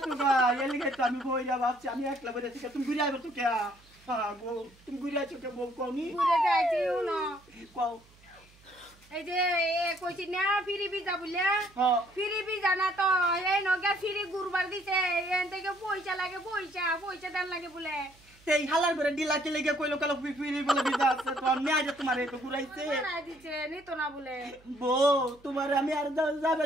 গা, এলিগে তো আমি বইরা ভাবছি আমি একলা বইরা ঠিক তুমি ঘুরে আইবে তো কে, গো তুমি ঘুরে আইছো কে বউ কমি ঘুরে যাইছি না, কও এই যে কইছি না ফিরি বিজা বলে, হ্যাঁ ফিরি বিজা না তো এই নগে ফিরি গুরবার দিছে, এন থেকে পয়সা লাগে, পয়সা দেন লাগে বলে, এই হালার করে ডিলাকে লেগে কইলো কালো ফিরি বলে বিজা আছে তো আমি আজ তোমার একটু ঘুরাইছে মারাই দিছে নিত না বলে, বউ তোমার আমি আর যাবে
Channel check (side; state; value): right; noise; hum, 28 dB below the sound